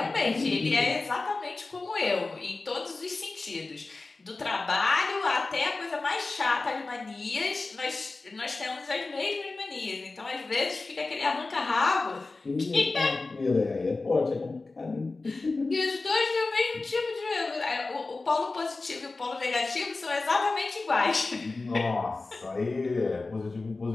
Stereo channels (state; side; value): quieter; right; 3.6 dB